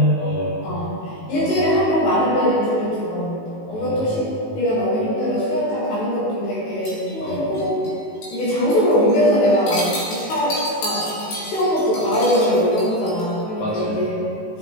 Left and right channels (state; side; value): late; right; 18 ms